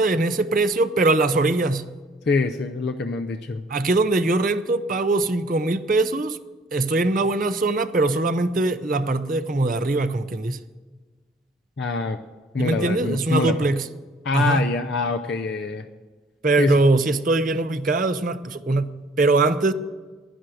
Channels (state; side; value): normal; both; correlation 0.56